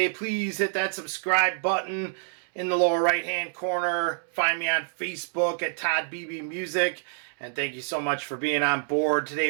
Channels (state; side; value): silent; left; 60 dB below the other